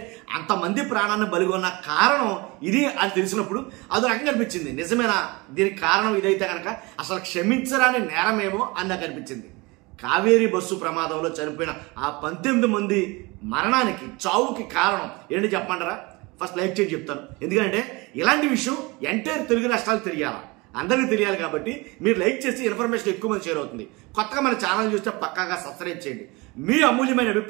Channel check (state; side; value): quieter; left; 24.9 dB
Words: అంతమంది ప్రాణాన్ని బలిగొన్న కారణం ఇది అని తెలిసినప్పుడు అది రకంగా అనిపించింది. నిజమేనా దీనికి కారణం ఇదైతే కనుక అసలు క్షమించరాని నేరమేమో అని నాకు అనిపించింది. కావేరీ బస్సు ప్రమాదంలో చనిపోయిన ఆ 19 మంది మరణానికి చావుకి కారణం ఏంటి చెప్పమంటారా? ఫస్ట్ లైక్ చేసి చెప్తాను. ఎందుకంటే ఇలాంటి విషయం ఎంటైర్ తెలుగు రాష్ట్రాలు తెలియాలి, అందరికీ తెలియాలి. కాబట్టి మీరు లైక్ చేసి ఇన్ఫర్మేషన్ ఎక్కువ మంది షేర్ అవుతుంది. కొత్తగా మన ఛానల్ చూస్తే పక్కాగా సబ్స్క్రైబ్ చేయండి. మీ అమూల్యమైన